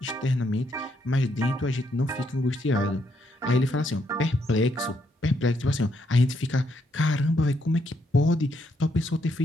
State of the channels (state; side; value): normal; both; correlation 0.75